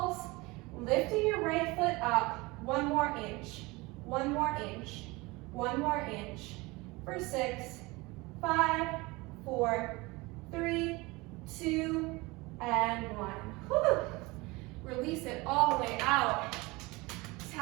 lifting your right foot up 1 more inch, 1 more inch, 1 more inch for 6, 5, 4, 3, 2, and 1. Whew. Release it all the way out.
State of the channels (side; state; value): left; quieter; 23.4 dB